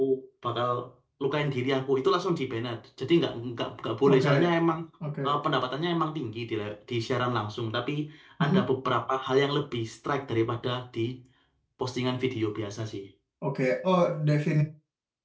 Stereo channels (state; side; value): identical; both; correlation 1.00